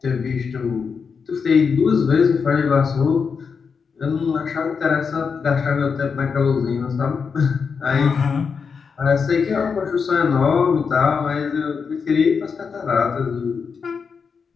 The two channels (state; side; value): quieter; right; 5.8 dB